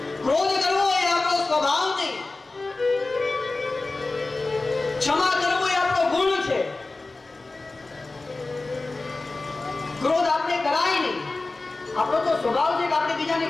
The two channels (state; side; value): quieter; right; 3.3 dB